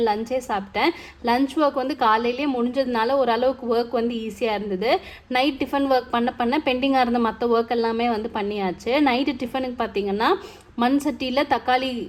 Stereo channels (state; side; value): identical; both; correlation 1.00